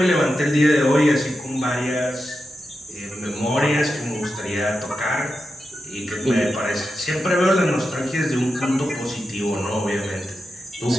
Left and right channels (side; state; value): both; normal; correlation 0.89